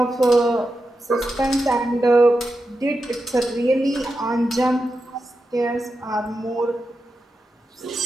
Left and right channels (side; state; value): both; normal; correlation 0.89